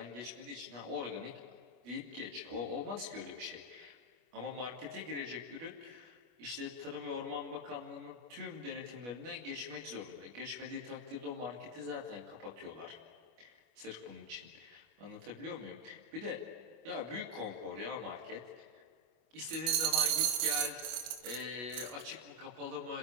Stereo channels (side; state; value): left; late; 25 ms